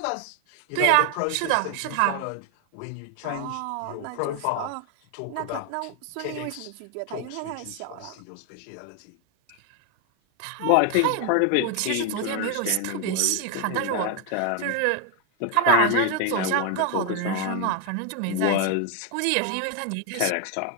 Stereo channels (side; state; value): both; different; correlation 0.01